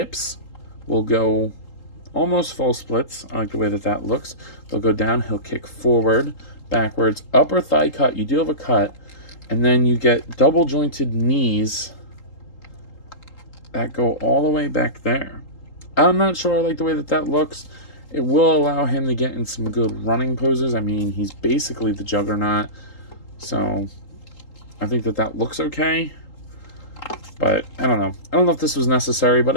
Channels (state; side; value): late; right; 3.8 ms